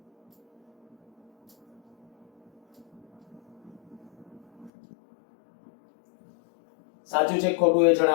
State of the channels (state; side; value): drops out; right; at 4.7 s